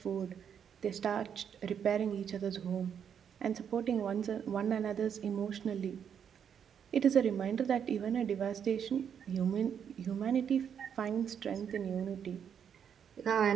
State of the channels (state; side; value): quieter; left; 8.0 dB